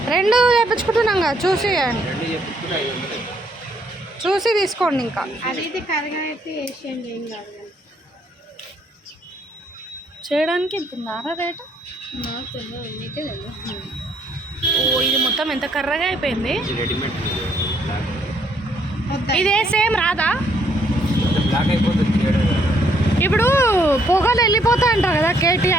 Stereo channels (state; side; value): normal; both; correlation 0.69